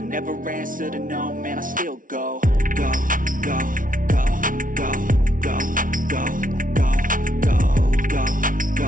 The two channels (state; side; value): late; left; 0.39 ms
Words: answer to no, man, I still go. Go, go, go, go, go, go, go, go, go,